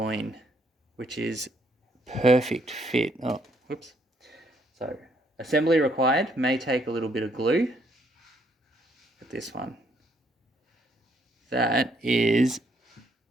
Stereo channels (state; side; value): normal; both; correlation 0.70